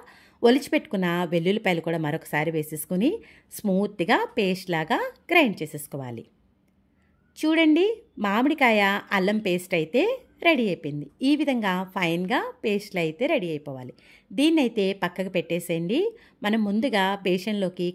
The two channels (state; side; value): identical; both; correlation 1.00